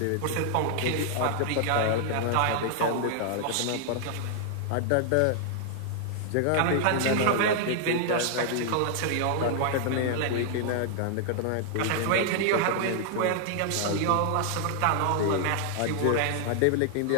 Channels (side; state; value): both; different; correlation 0.00